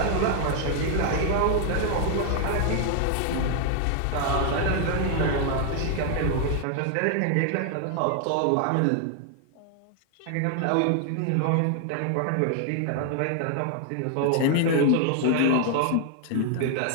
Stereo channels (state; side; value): different; both; correlation 0.00